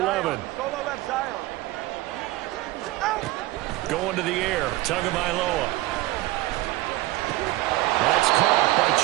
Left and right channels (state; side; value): quieter; left; 17.9 dB